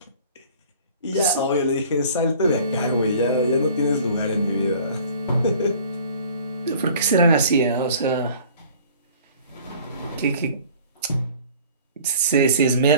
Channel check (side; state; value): both; inverted; correlation -0.49